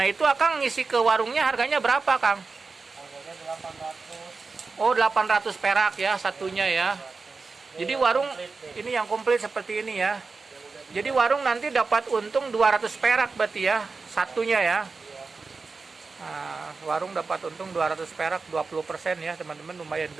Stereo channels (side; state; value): left; quieter; 4.3 dB